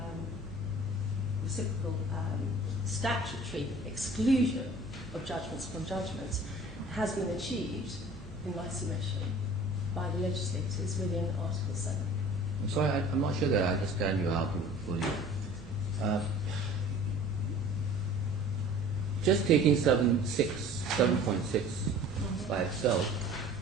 reciprocal statutory exclusion of judgments from judgments has been achieved, in my submission, by the legislators within Article 7. I'm sorry, I'm not sure that I understand your argument fully. Just taking 7.6 by itself,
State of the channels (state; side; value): normal; both; correlation 0.46